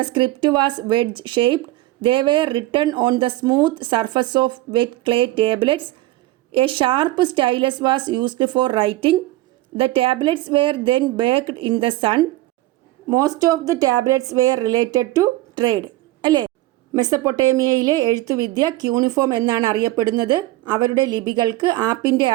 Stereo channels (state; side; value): quieter; left; 17.3 dB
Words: script was wedge-shaped. They were written on the smooth surface of wet clay tablets. A sharp stylus was used for writing. The tablets were then baked in the sun. Most of the tablets were related to trade. അല്ലേ? മെസ്സപ്പൊട്ടേമിയയിലെ എഴുത്തുവിദ്യ cuneiform എന്നാണ് അറിയപ്പെടുന്നത്. അവരുടെ ലിപികൾക്ക് ആപ്പിൻ്റെ